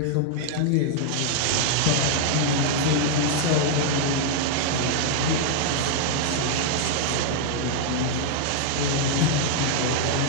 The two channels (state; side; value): different; both; correlation 0.00